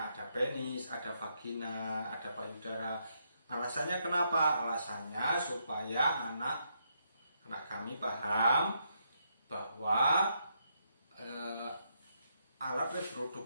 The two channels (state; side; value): inverted; both; correlation -0.78